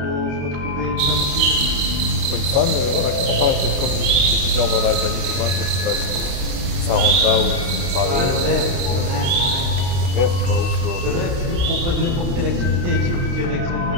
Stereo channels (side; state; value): left; late; 29 ms